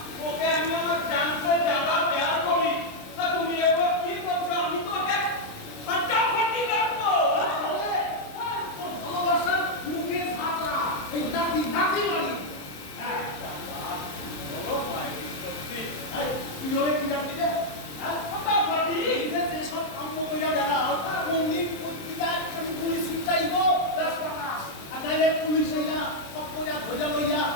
ওকে আমি আমার জানতে জানা প্যার করি, তা তুমি এগুলো কি করছো? আমি তো ওকে ফাটাফাটি রাখবো। ভালোবাসার মুখে ঝাঁপা এই নাতি নাতি বাড়ি। হ্যাঁ বলো ভাই, সত্যি তুই ওরে কি জানতি রে? হ্যাঁ ফাটাফাটি যেসব কাম্য কইরা বেড়াও কোনদিন পত্রিকায় আমি পুলিশ উঠাইব 10 টাকা আর নাইলে পুলিশ হইয়া সব কইরা ধইরা লইয়া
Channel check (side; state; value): right; late; 27 ms